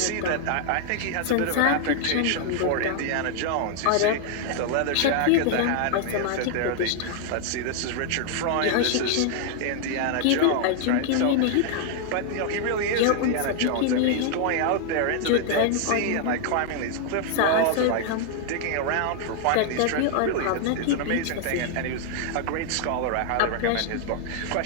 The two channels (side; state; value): both; different; correlation 0.00